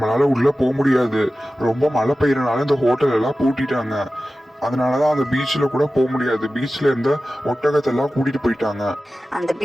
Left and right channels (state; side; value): normal; both; correlation 0.95